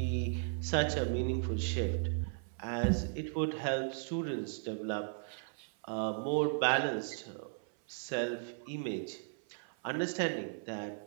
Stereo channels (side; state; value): left; silent; 54 dB below the other